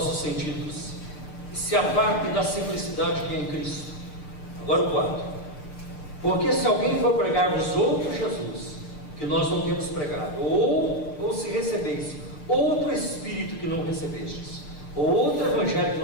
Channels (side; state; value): right; late; 6.7 ms